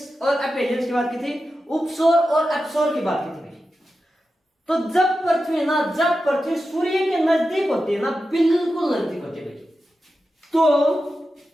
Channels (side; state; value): both; normal; correlation 0.91